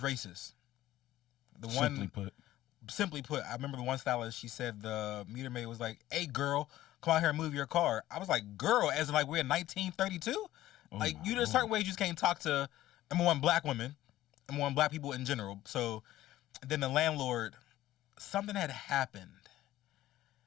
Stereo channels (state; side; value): quieter; right; 14.6 dB